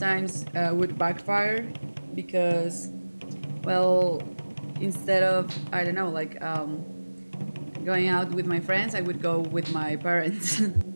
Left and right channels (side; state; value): both; inverted; correlation -1.00